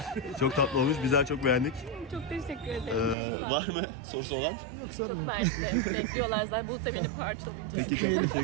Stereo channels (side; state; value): left; drops out; at 3.2 s